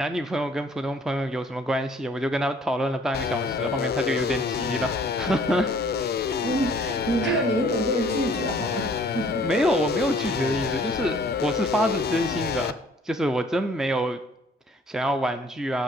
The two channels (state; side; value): normal; both; correlation 0.57